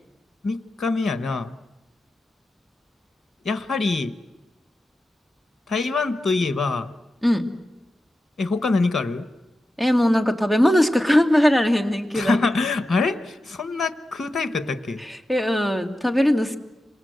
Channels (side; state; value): both; normal; correlation 0.91